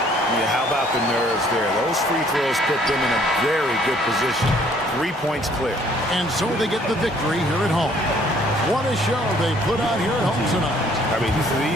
Yeah, how about the nerves there? Those free throws put them in a very good position. 3 points clear. And so they get the victory here at home. What a show they put on here at home tonight. I mean,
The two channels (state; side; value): normal; both; correlation 0.61